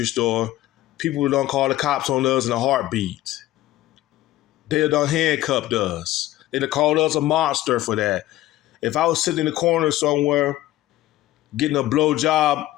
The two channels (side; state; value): right; quieter; 15.5 dB